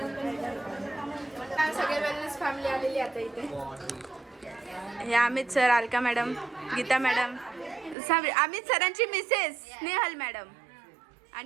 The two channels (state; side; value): drops out; left; at 8.0 s